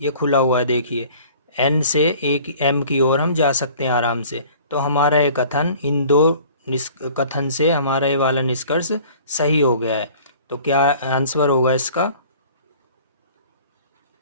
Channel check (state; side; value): inverted; both; correlation -0.49